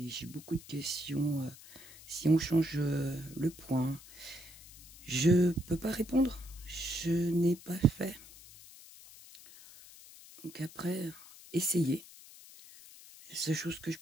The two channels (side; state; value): left; noise; hiss, 19 dB below the sound